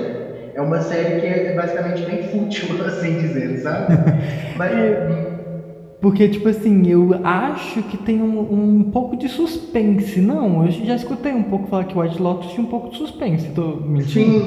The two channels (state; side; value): identical; both; correlation 1.00